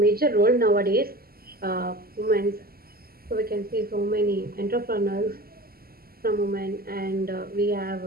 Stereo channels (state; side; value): late; left; 0.44 ms